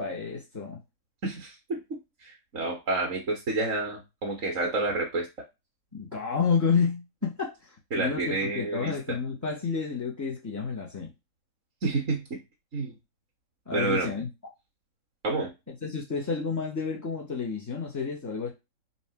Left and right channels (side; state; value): left; late; 3.6 ms